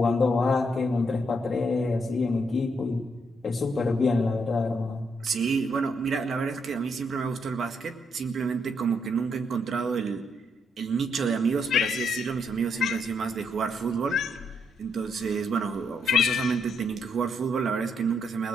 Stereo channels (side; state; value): both; normal; correlation 0.76